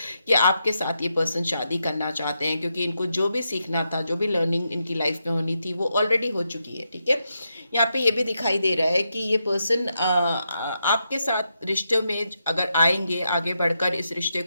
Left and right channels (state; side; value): inverted; both; correlation -0.84